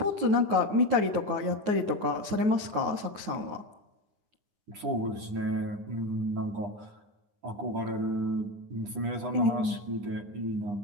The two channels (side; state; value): left; late; 9.9 ms